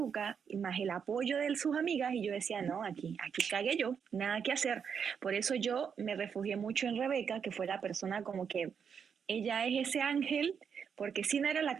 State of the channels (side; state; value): left; quieter; 7.0 dB